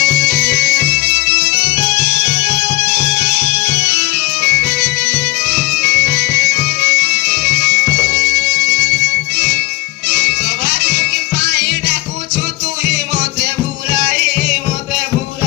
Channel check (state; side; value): quieter; right; 20.6 dB